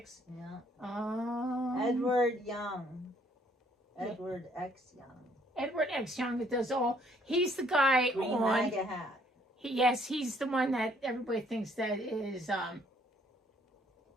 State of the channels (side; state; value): both; normal; correlation 0.64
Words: Yeah. Edward Young. Edward X Young. Edward X Young that does all. He's the guy Green on. MAGA hat. Yes, he's the one that everybody thinks that is